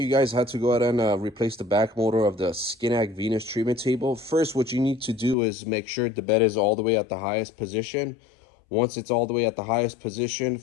guys how to go ahead and replace the back motor of the Skinak Venus treatment table. First, what you need to do is make sure the bed is all the way at the highest position. Once it's all the way at the highest position,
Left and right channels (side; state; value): right; drops out; at 5.4 s